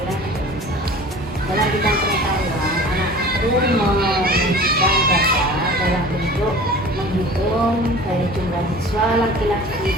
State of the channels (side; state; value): both; normal; correlation 0.42